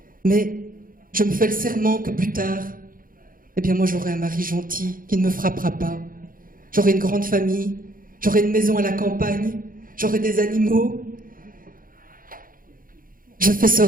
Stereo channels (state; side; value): late; left; 0.41 ms